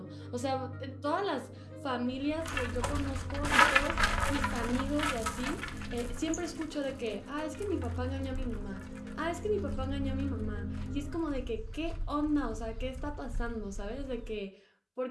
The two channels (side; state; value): both; identical; correlation 1.00